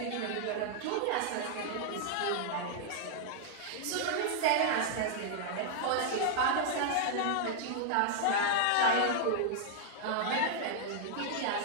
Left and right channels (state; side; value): different; both; correlation -0.01